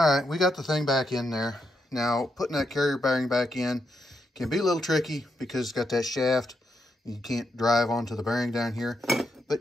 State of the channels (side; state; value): both; normal; correlation 0.82